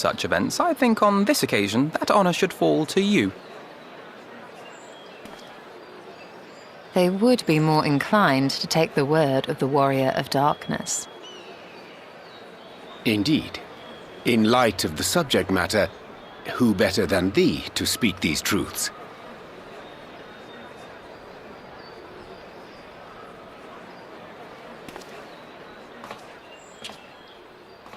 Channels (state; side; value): identical; both; correlation 1.00